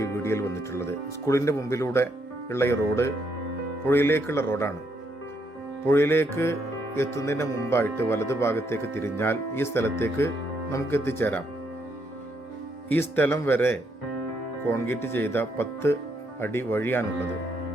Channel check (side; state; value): both; normal; correlation 0.75